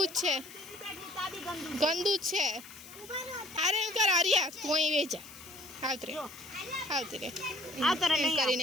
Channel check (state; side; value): noise; left; hiss, 17 dB below the sound